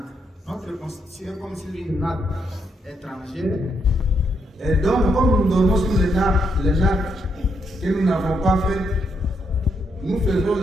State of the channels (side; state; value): both; normal; correlation 0.78